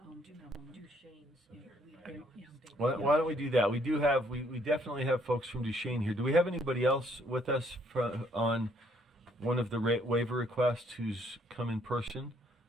Why don't we do that? We definitely have folks from Duchesne here. Do we have anybody else with us on one of the waiver requests who's come in person?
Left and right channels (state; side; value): normal; both; correlation 0.66